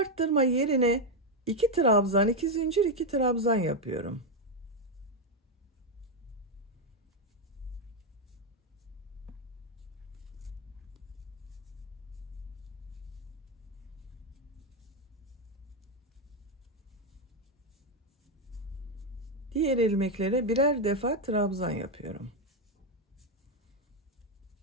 yerine 2 trabzan, 2 zincir, 2 trabzan yapıyorum. Diğer ilmeklere birer defa trabzan yapıyorum.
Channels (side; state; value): both; normal; correlation 0.05